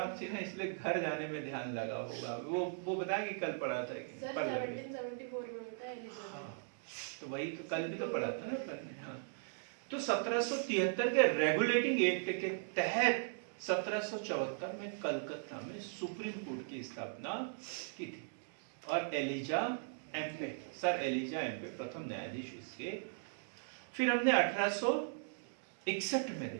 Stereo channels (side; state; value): left; silent; digital silence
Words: थी ना, इसलिए घर जाने में ध्यान लगा होगा। वो बताया कि कल पढ़ा था कि सर 1774 में होता है एलिजाबेथ। हाँ, तो वही तो कल भी तो पढ़ा था ना अपन ने। हाँ, तो 1773 के रेगुलेटिंग एक्ट के तहत 1774 में कलकत्ता में सुप्रीम कोर्ट की स्थापना की थी। और Elijah Impey, sir Elijah Impey प्रथम न्यायाधीश इसके। फिर हमने 1861 में